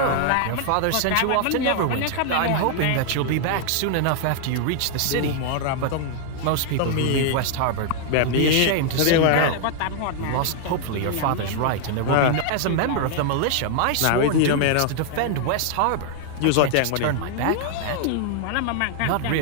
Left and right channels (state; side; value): different; both; correlation 0.00